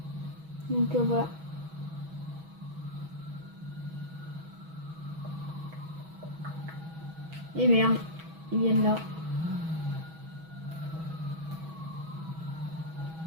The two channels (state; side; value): late; left; 6.2 ms